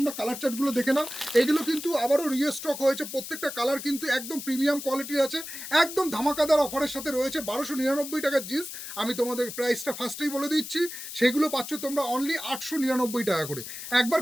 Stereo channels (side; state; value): left; noise; hiss, 9 dB below the sound